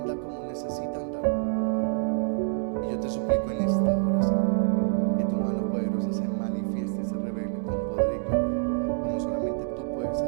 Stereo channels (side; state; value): left; silent; digital silence